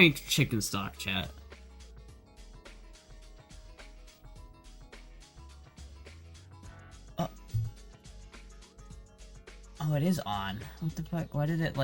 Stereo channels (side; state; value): both; identical; correlation 1.00